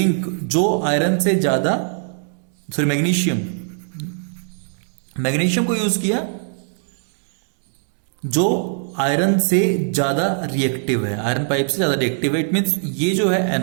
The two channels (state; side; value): silent; left; digital silence